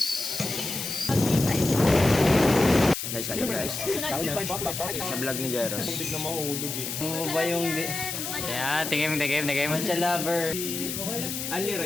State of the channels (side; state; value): left; noise; hiss, 5 dB below the sound